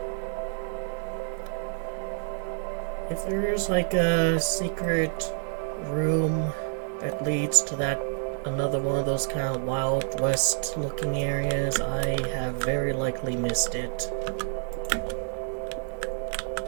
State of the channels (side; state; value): left; silent; digital silence